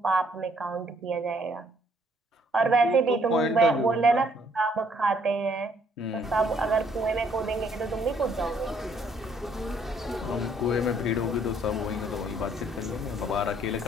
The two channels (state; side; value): normal; both; correlation 0.65